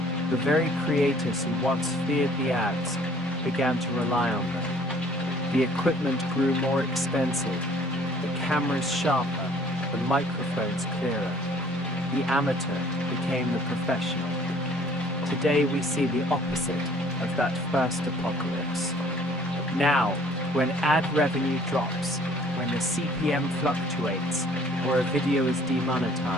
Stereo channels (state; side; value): normal; both; correlation 0.56